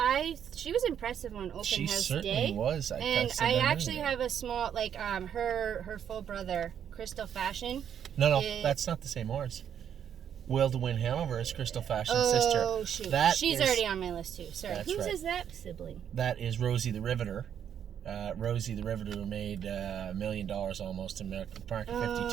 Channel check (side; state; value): left; quieter; 8.9 dB